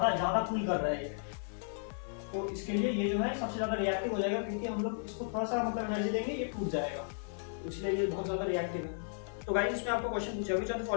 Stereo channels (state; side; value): silent; right; 55 dB below the other